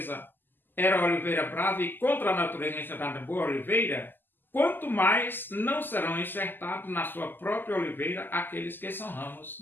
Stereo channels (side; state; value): right; late; 0.092 ms